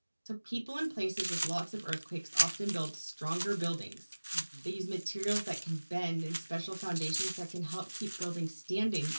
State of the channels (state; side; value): inverted; both; correlation -1.00